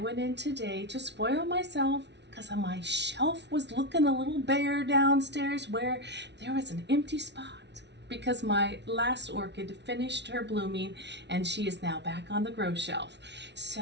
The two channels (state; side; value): late; left; 0.50 ms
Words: in today to spoil myself because my shelf was looking a little bare downstairs where there was an empty spot because my last orchid finished her blooming and she is now back on the grow shelf.